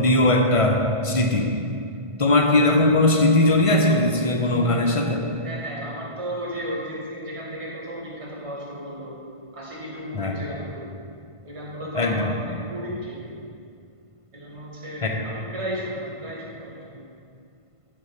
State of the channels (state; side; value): late; left; 1.5 ms